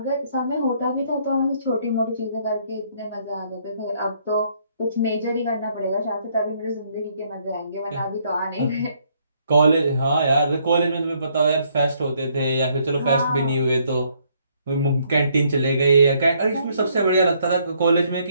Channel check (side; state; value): both; inverted; correlation -0.69